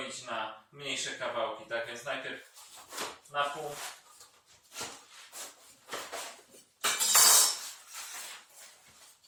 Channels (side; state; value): both; identical; correlation 1.00